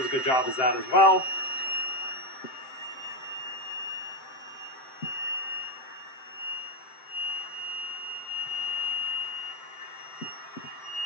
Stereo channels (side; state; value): right; late; 7.7 ms